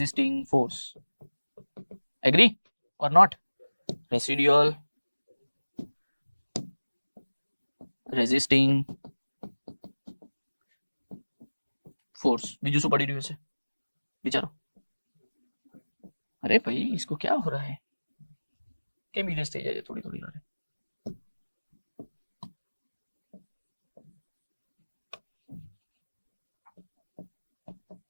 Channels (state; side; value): inverted; both; correlation -1.00